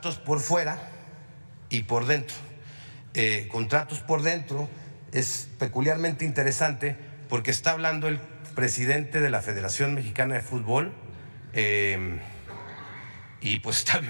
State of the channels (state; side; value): inverted; both; correlation -1.00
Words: por fuera y por dentro. Contratos por dentro es peculiarmente interesante porque está hablando el presidente de la Federación Mexicana de Fútbol y pues está